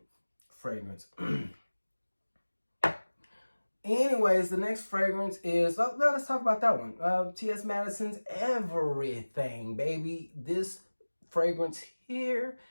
fragrance. Anyways, the next fragrance is, let's talk about that one. T.S. Madison's Everything, baby. This fragrance here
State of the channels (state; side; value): inverted; both; correlation -1.00